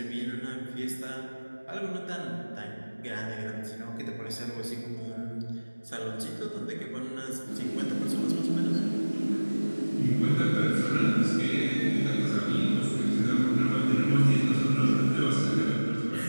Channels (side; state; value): both; inverted; correlation -1.00